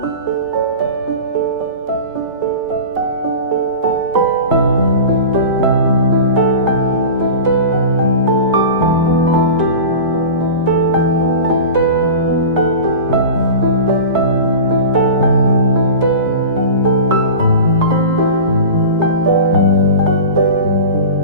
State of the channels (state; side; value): inverted; both; correlation -0.32